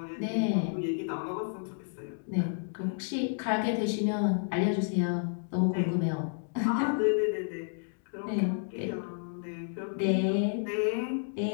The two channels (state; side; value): silent; right; digital silence